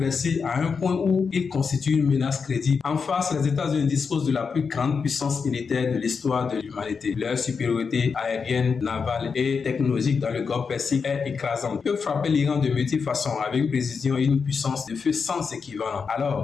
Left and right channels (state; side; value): quieter; right; 5.5 dB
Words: à un point où il constitue une menace crédible. En face, les États-Unis disposent de la plus grande puissance militaire de l'histoire de l'humanité. Leur supériorité aérienne, navale et technologique dans le Golfe Persique est écrasante. Ils peuvent frapper l'Iran de multiples façons avec une précision et une puissance de feu sans équivalent.